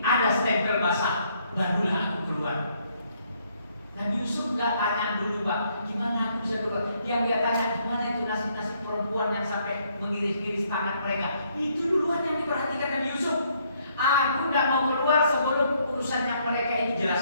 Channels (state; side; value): inverted; both; correlation -0.69